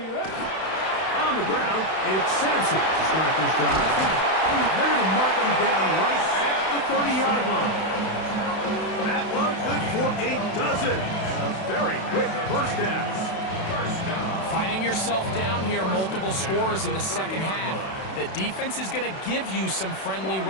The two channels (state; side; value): late; right; 31 ms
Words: ready. On the ground, it's Sampson to start this drive. And they're going to mark him down right at the 30-yard line. That one good for a dozen. And a very quick 1st down. Finding yourself down here, multiple scores in the 2nd half. The defense is going to give you some friendly